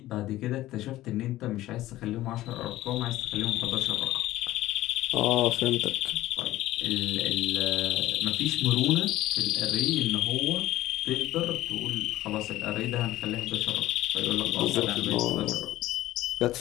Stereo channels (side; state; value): right; quieter; 15.6 dB